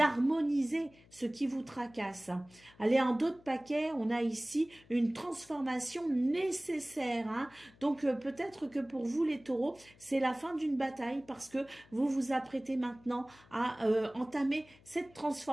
ce qui vous tracasse. Allez, en dos de paquet, on a ici une transformation nécessaire, hein. Donc peut-être que pour vous les taureaux, c'est la fin d'une bataille parce que vous vous apprêtez maintenant à entamer cette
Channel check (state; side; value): noise; left; hum, 27 dB below the sound